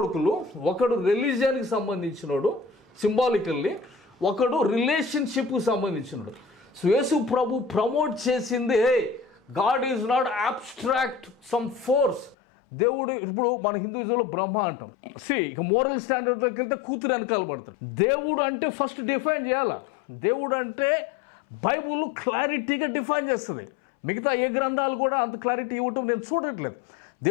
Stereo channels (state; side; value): drops out; right; at 12.4 s